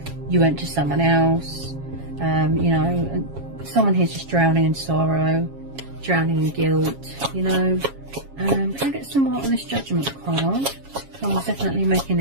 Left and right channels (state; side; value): late; left; 7.3 ms